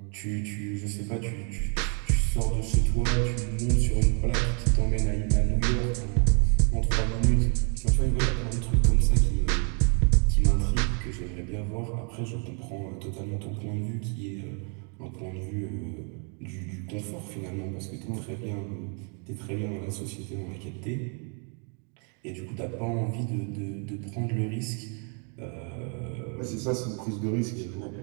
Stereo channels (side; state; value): left; quieter; 39.4 dB